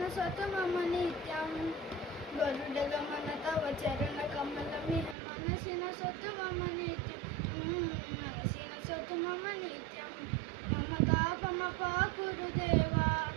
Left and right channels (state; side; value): drops out; left; at 5.2 s